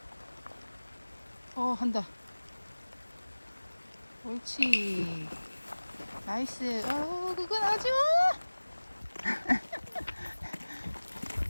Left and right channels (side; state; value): both; inverted; correlation -1.00